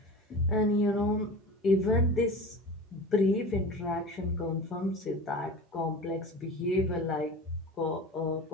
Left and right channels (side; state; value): both; normal; correlation 0.34